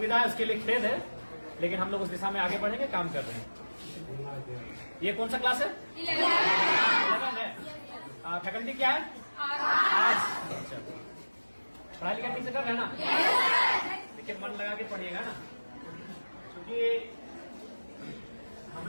है उसके लिए खेद है, लेकिन हम लोग उस दिशा में आगे बढ़ेंगे, काम कर रहे हैं। ये कौन सा क्लास है? 11 है। फैकल्टी क्या है? आर्ट्स। पढ़ाई लिखाई ठीक से कर रहे हैं ना? लेकिन मन लगा के पढ़िएगा ना, क्योंकि हम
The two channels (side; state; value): both; inverted; correlation -1.00